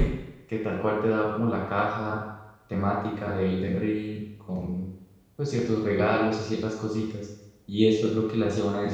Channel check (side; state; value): both; identical; correlation 1.00